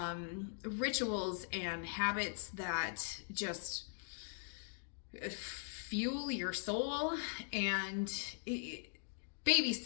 rituals and habits that just fuel your soul. And Baby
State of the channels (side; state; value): right; silent; digital silence